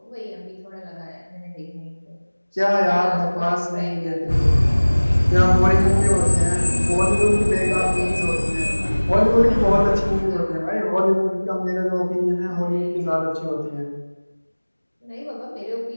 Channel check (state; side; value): inverted; both; correlation -1.00